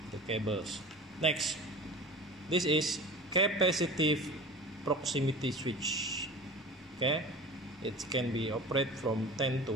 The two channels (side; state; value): both; normal; correlation 0.37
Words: the cables. Next, this is capacitive proximity switch. It can be operated from 10